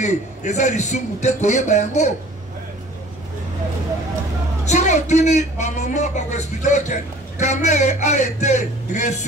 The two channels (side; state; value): both; normal; correlation 0.49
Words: et ça, ils sont moutés, Koyebayango. Si on tourne, ma maman va expliquer que Kamere a été